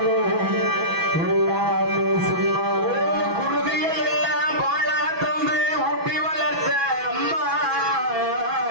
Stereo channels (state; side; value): late; left; 6.1 ms